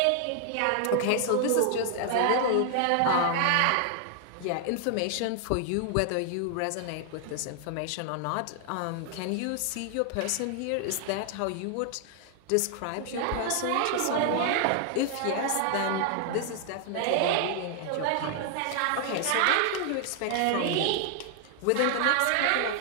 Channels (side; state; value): both; different; correlation 0.00